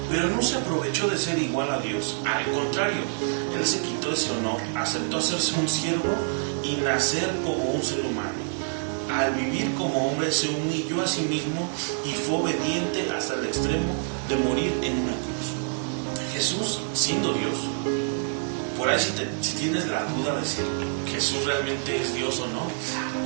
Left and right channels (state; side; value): silent; left; 61 dB below the other